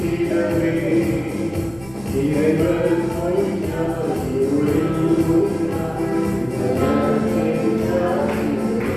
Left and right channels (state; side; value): noise; right; rumble, 21 dB below the sound